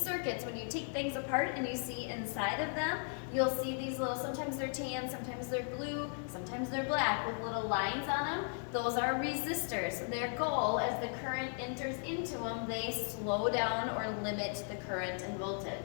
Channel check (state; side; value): silent; right; 53 dB below the other